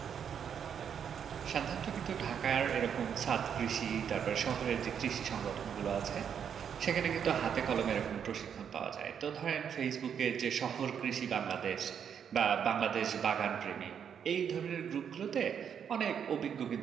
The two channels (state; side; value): quieter; left; 7.9 dB